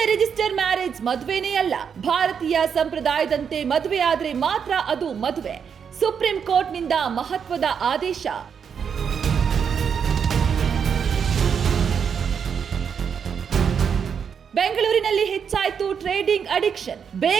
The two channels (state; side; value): quieter; left; 7.1 dB